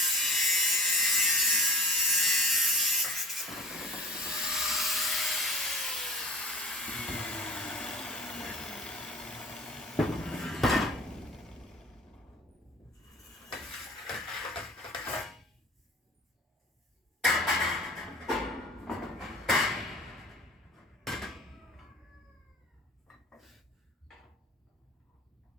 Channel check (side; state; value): both; normal; correlation 0.40